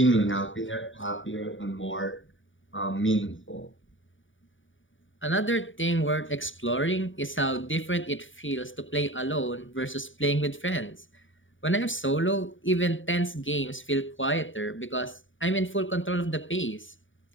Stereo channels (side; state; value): right; late; 0.57 ms